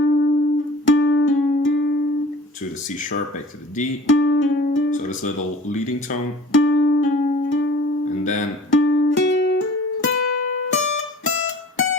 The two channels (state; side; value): normal; both; correlation 0.45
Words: to the C sharp, back to the D. So this little leading tone. And then